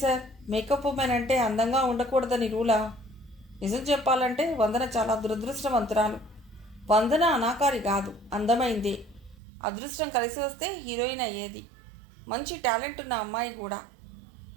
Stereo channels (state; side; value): drops out; left; at 9.3 s